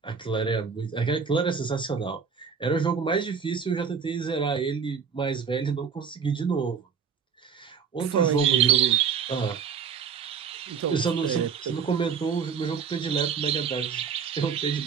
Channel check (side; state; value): left; quieter; 6.4 dB